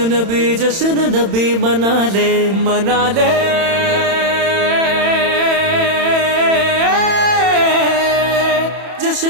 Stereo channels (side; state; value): left; late; 31 ms